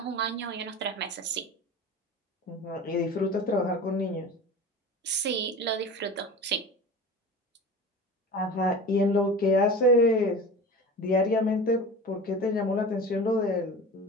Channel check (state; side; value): normal; both; correlation 0.34